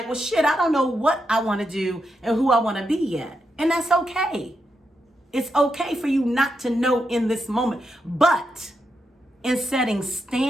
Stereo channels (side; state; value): both; normal; correlation 0.84